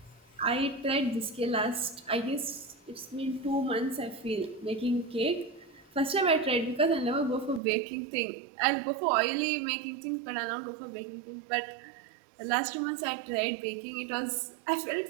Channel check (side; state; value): left; drops out; at 7.6 s